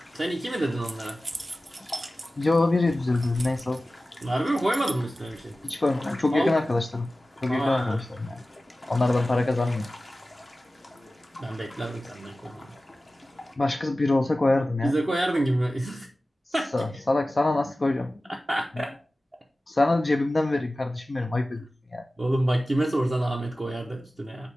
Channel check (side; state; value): both; normal; correlation 0.96